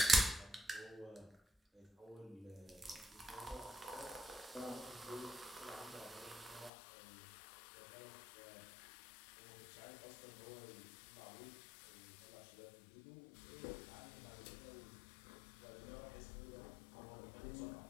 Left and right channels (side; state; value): right; drops out; at 6.7 s